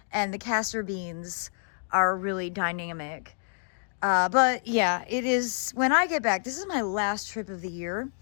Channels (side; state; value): right; silent; digital silence